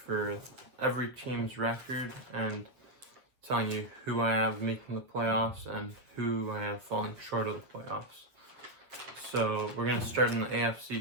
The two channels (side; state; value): left; late; 7.7 ms